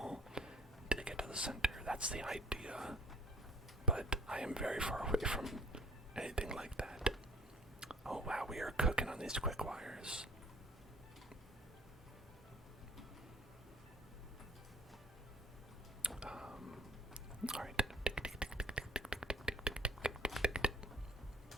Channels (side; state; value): both; normal; correlation 0.55